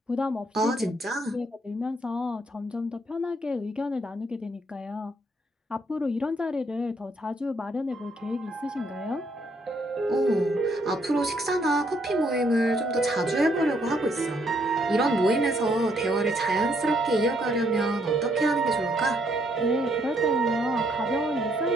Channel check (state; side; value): normal; both; correlation 0.70